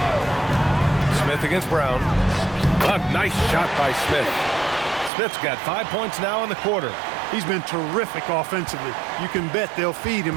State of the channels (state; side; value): drops out; left; at 5.1 s